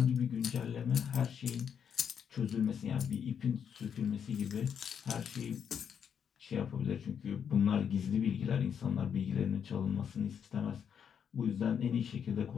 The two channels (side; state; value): right; quieter; 7.7 dB